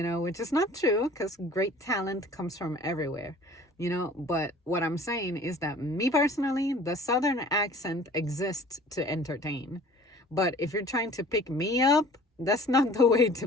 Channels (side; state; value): both; normal; correlation 0.48